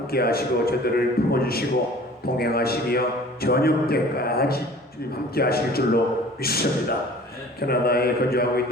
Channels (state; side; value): normal; both; correlation 0.47